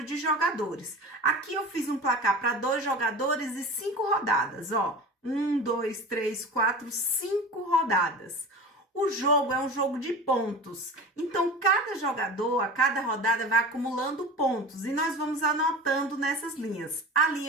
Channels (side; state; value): both; normal; correlation 0.33